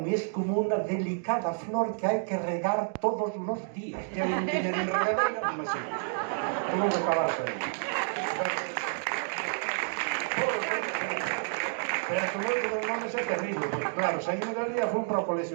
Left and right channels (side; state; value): left; silent; digital silence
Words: es como una delicada flor que hay que regar todos los días. Que non tiña nin regadeira, non me sigo. Tuvo que acabarse aí. Pero que moito dos nomes é terrible, porque claro, saímos de ali e fui para o colexio